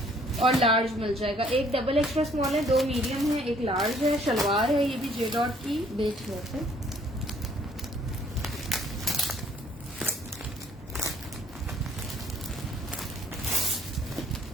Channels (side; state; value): both; normal; correlation 0.61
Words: और लार्ज मिल जाएगा। एक डबल एक्स्ट्रा स्मॉल है, 2 मीडियम है, एक लार्ज है। शलवार है ये भी जे डॉट की, बेच हुआ है।